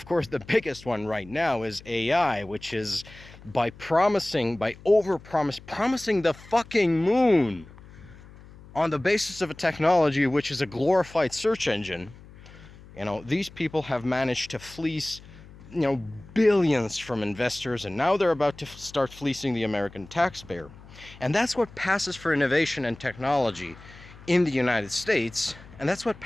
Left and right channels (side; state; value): left; noise; hum, 20 dB below the sound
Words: course, the biggest one right now is AI, which is promising the fucking moon on the basis of a technology which is a glorified search engine. These people have managed to fleece, billions from investors, and now they're about to start fleecing the American taxpayer. And that's what passes for innovation and technology in the United States, and that's what